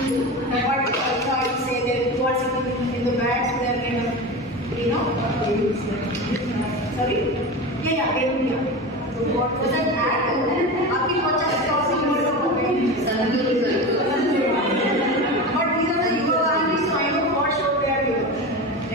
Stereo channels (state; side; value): normal; both; correlation 0.26